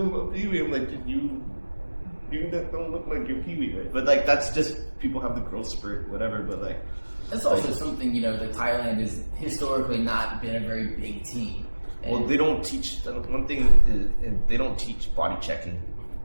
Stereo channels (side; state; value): both; inverted; correlation -1.00